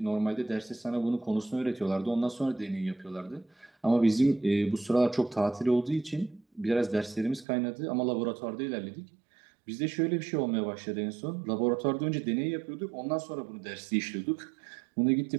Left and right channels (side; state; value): left; drops out; at 7.5 s